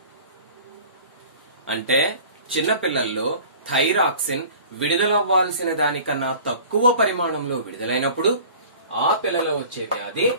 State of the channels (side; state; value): both; inverted; correlation -0.45